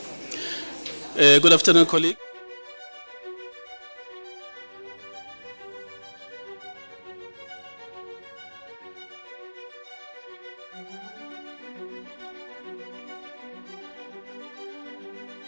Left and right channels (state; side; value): inverted; both; correlation -1.00